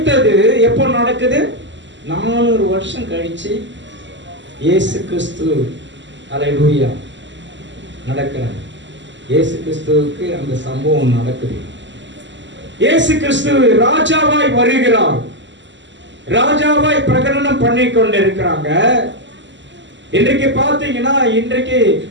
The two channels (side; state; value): left; late; 0.54 ms